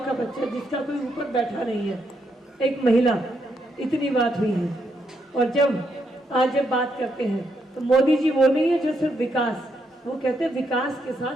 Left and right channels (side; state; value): both; normal; correlation 0.78